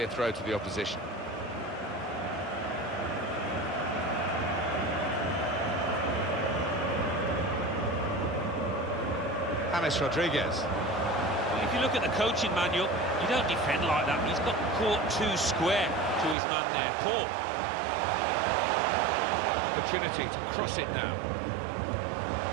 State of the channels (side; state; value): left; drops out; at 16.4 s